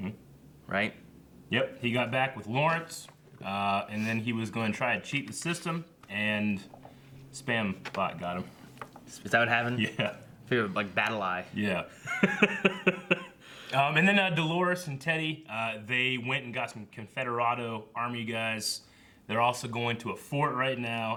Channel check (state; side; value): identical; both; correlation 1.00